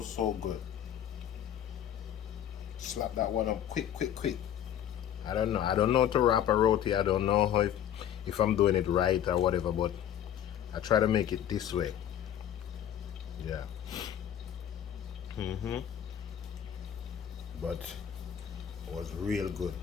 good. Slap that one up quick. I don't know. I don't know how to wrap a roti. I don't know how if I'm doing it right or whatever, but I try to make it this way. Yeah. But it was real good.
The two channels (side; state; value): right; quieter; 10.1 dB